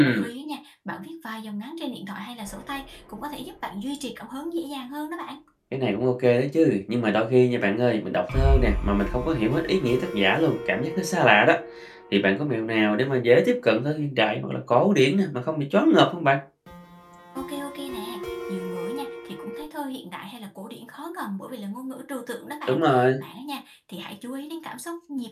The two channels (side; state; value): both; identical; correlation 1.00